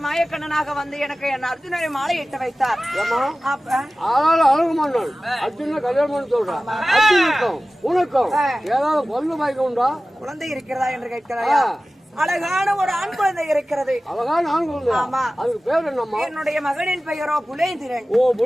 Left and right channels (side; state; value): both; normal; correlation 0.96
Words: வந்து எனக்கு என் அர்ஜுனரை மாலை இட்டு வைத்தார். அழகுமன்னன் அர்ஜுன கல்யாணம் சொல்றான். உனக்கும் ஏதாவது பொண்ணு பாய்க்க உண்டா? குழந்தை இருக்கிறதா என்று கேட்கிறாயா? அழகான ஒரு ஆண் குழந்தை இருக்கிறது. அழகான ஆண் குழந்தை? ஆமா. அதுக்கு பேர் என்னம்மா? என்னுடைய மகனின் பெயரோ புலேந்திரன். ஓ,